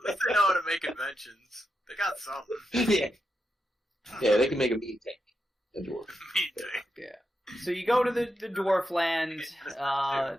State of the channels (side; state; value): both; normal; correlation 0.85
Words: least they know how to make inventions. They got something. Yeah, they can make a meat tank. A dwarf. Me too. So you go to the dwarf land,